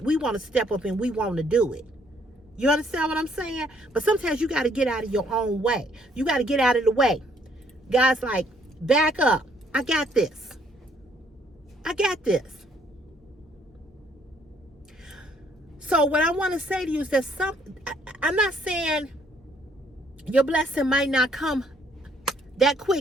step up and we want to do it. You understand what I'm saying? But sometimes you got to get out of your own way. You got to get out of the way. God's like, back up. I got this. I got this. So what I want to say to you is that I'm not saying your blessing might not come that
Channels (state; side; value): normal; both; correlation 0.66